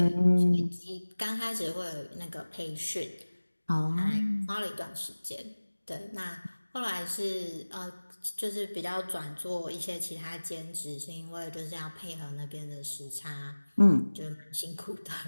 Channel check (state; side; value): inverted; both; correlation -1.00